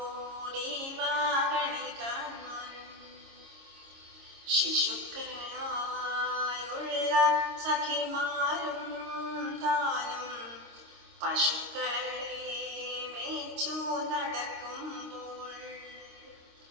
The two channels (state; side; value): late; left; 26 ms